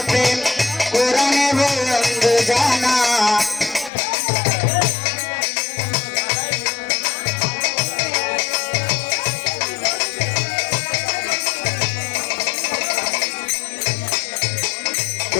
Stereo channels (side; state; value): right; drops out; at 3.9 s